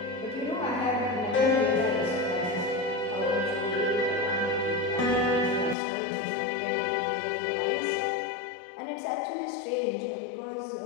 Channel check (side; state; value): right; drops out; at 5.8 s